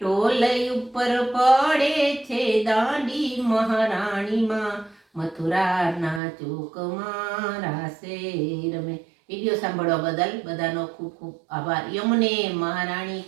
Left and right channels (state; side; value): drops out; left; at 6.2 s